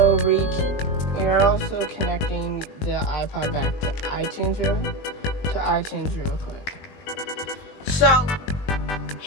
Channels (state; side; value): late; right; 20 ms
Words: connecting the iPod back to iTunes real quick. So